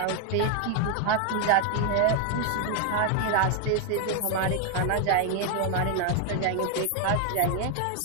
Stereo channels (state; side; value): different; both; correlation 0.01